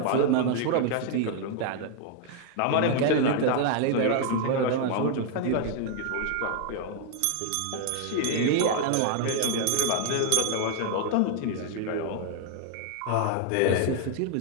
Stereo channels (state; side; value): different; both; correlation 0.00